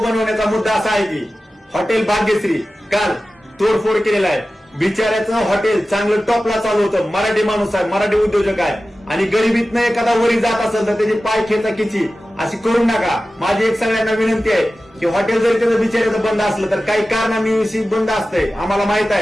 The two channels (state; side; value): normal; both; correlation 0.95